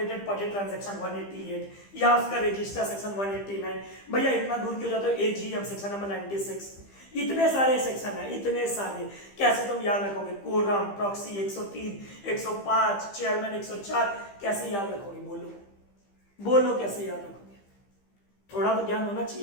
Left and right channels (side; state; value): right; late; 15 ms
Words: पार्टी ट्रांजैक्शन 188, या उसका रजिस्टर सेक्शन 189। भैया इतना दूर क्यों जाते हो? एजीएम सेक्शन नंबर 96, इतने सारे सेक्शन है, इतने सारे, कैसे तुम याद रखोगे? कोरम, प्रॉक्सी 103, 105, चेयरमैन 104, कैसे याद रखोगे? बोलो बोलो, कैसे याद रखोगे? थोड़ा तो ज्ञान होना